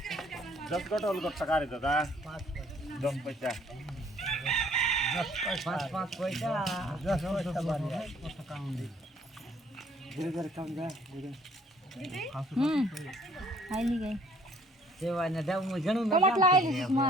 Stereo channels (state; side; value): normal; both; correlation 0.59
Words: दस कट अलग टका रे दादा 10 पैसा 5 পয়সা 10 পয়সা বাড়ি धीरे धीरे कम जा आईली गई સેવા ને દાવ મુ ઘણું टमाटर लाएली सुषमा